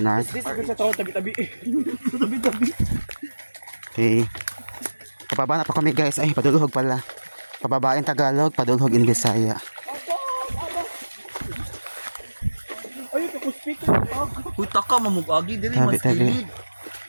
Okay. Pababa na po kami guys. Ay, padulhog pala. Pababa in Tagalog, padulhog in Bisaya. Puta ka, mamugagi diri Tabi. mas kilid.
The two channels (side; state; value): both; inverted; correlation -1.00